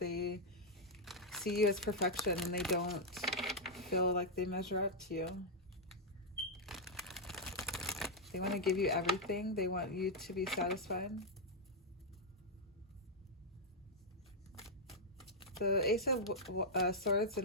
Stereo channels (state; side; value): normal; both; correlation -0.03